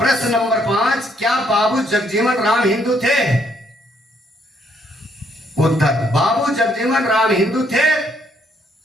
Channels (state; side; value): normal; both; correlation 0.70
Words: नंबर 5, क्या बाबू जगजीवन राम हिंदू थे? उत्तर, बाबू जगजीवन राम हिंदू थे